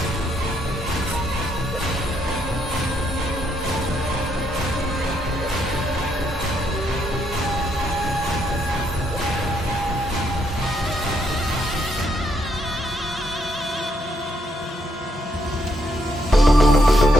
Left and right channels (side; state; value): both; normal; correlation 0.75